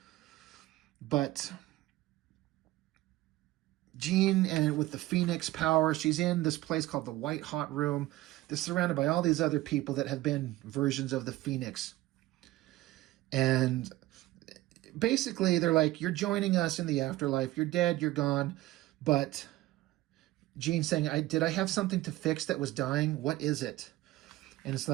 But Jean, and with the Phoenix power, she's in this place called the White Hot Room. They're surrounded by all these other people that have been versions of the Phoenix. And basically they're like, you're joining us in the afterlife. You're dead, you're gone. But Jean's saying, did I have something to fix that was dying? What is it? And it's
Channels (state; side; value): quieter; left; 17.0 dB